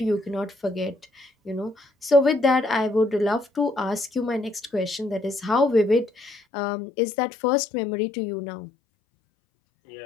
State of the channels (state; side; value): drops out; right; at 6.4 s